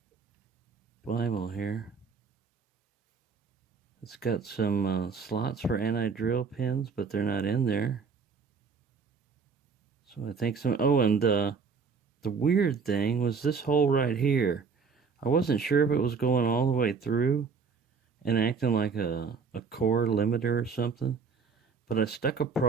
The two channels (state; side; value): quieter; left; 5.3 dB